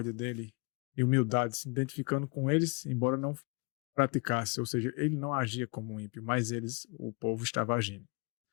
dele e humildade, se identificando com eles, embora não praticasse, ou seja, ele não agia como ímpio, mas o povo estava agindo.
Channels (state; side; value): quieter; right; 31.2 dB